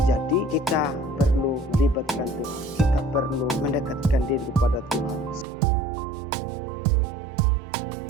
Jadi kita perlu libatkan Tuhan, kita perlu mendekatkan diri kepada Tuhan. Seperti Raja Daud ketika dia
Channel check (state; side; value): drops out; left; at 5.5 s